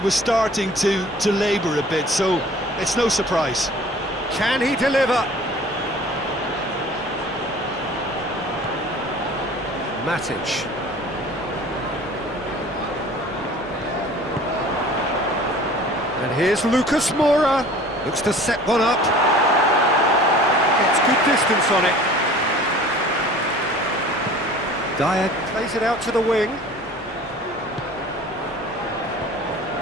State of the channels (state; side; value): normal; both; correlation 0.46